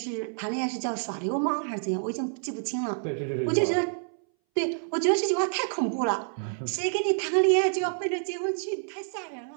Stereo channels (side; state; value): left; silent; 59 dB below the other